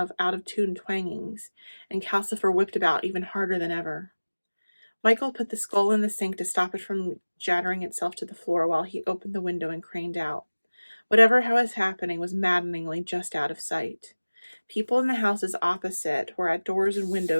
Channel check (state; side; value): inverted; both; correlation -1.00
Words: out-of-tune twangings, and Calcifer whipped about even harder than ever. Michael put the skull in the sink to stop it from jattering itself to the floor while he opened the window and craned out. Whatever was happening was maddeningly just out of sight. People in the houses opposite were at doors and